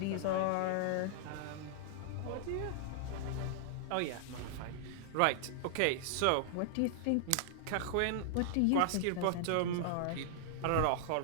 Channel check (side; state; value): both; different; correlation -0.01